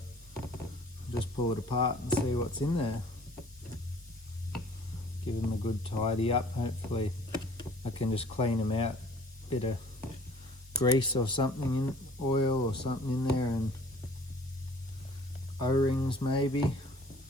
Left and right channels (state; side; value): normal; both; correlation 0.53